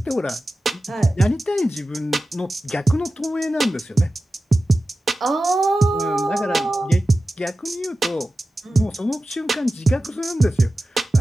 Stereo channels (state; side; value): normal; both; correlation 0.94